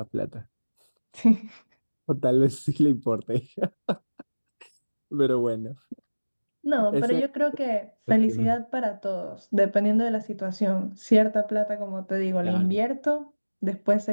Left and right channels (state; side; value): inverted; both; correlation -1.00